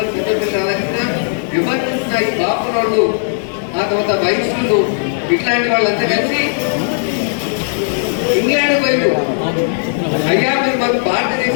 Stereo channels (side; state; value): right; silent; digital silence